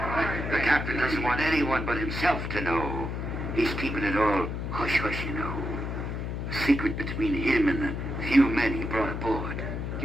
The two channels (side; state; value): left; noise; hum, 4 dB below the sound